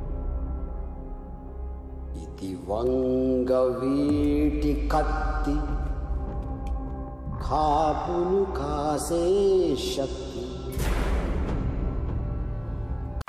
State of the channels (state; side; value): identical; both; correlation 1.00